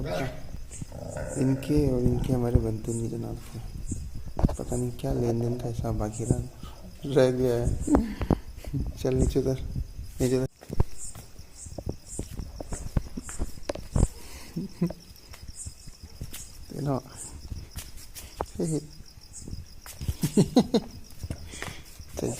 का। इनके और इनके हमारे बनते नहीं जनाब के। पता नहीं क्या लेन देन का हिसाब बाकी रह गया है। चल नीचे उतर, नीचे उतर। तेना चल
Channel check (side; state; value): both; identical; correlation 1.00